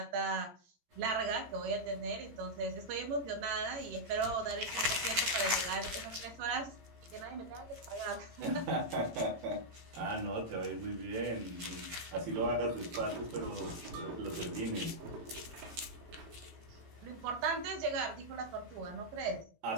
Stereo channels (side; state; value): left; late; 17 ms